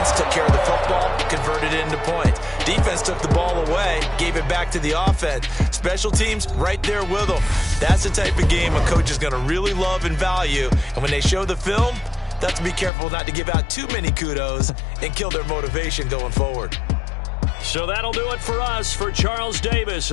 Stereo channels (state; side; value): drops out; right; at 12.9 s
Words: took care of the football, converted it into points. Defense took the ball away, gave it back to the offense. Special teams right there with them. That's the type of game a coach is going to really love and value. And when they show the film, they have to be careful not to give out too many kudos and kill their motivation going forward. So that'll do it for us. For Charles Davis